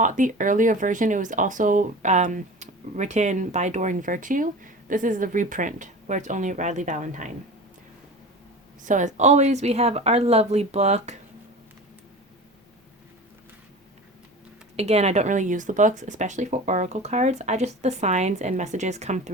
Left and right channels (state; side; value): normal; both; correlation 0.35